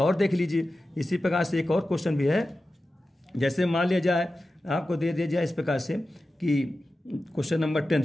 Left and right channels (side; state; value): both; normal; correlation 0.93